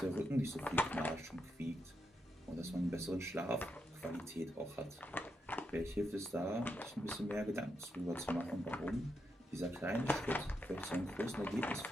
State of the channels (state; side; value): normal; both; correlation 0.83